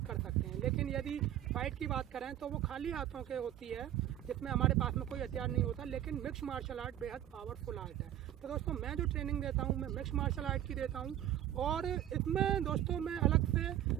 कर सकते हैं। लेकिन यदि फाइट की बात करें तो वो खाली हाथों के होती है जिसमें हमारे पास में कोई हथियार नहीं होता। लेकिन मिक्स मार्शल आर्ट बेहद पावरफुल आर्ट है। तो दोस्तों मैं जो ट्रेनिंग देता हूँ मैं मिक्स मार्शल आर्ट की देता हूँ और इसमें दोस्तों मैं अलग से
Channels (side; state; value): left; quieter; 11.9 dB